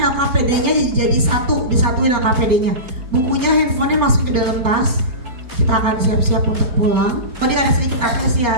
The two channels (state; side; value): late; left; 4.3 ms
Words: jadi satu, disatuin LKPD-nya. Bukunya, handphonenya masuk ke dalam tas. Kita akan siap-siap untuk pulang. Tadi ada sedikit